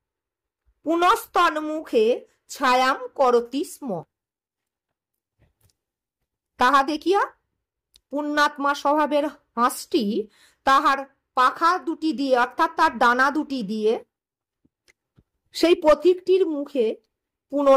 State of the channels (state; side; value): identical; both; correlation 1.00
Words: পুনস্তন্মুখে ছায়াম করতি স্ম। তাহা দেখিয়া পুণ্যাত্মা স্বভাবের হাঁসটি তাহার পাখা দুটি দিয়ে অর্থাৎ তার ডানা দুটি দিয়ে সেই পথিকটির মুখে